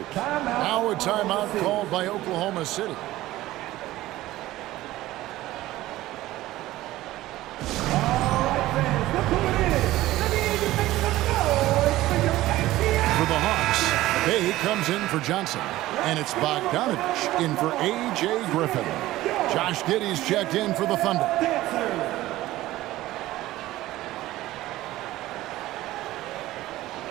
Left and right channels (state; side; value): quieter; left; 16.3 dB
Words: Now a timeout called by Oklahoma City. For the Hawks, Bay comes in for Johnson. And it's Bogdanovich in for A.J. Griffin. Josh Giddey's checked in for the Thunder.